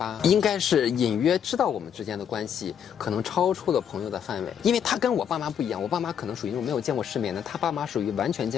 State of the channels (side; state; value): right; quieter; 8.4 dB